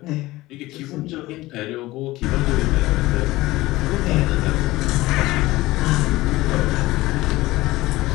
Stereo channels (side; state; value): right; quieter; 18.6 dB